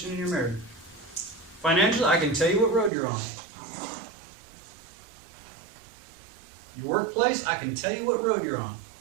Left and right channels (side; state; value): left; drops out; at 2.9 s